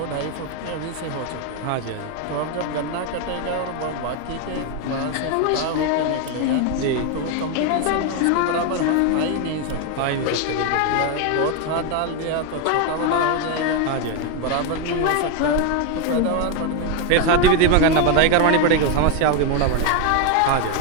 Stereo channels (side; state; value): both; different; correlation 0.01